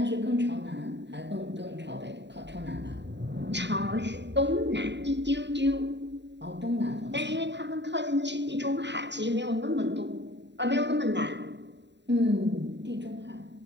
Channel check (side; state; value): left; late; 0.52 ms